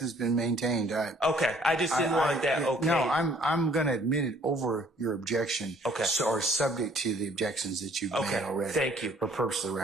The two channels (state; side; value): normal; both; correlation 0.60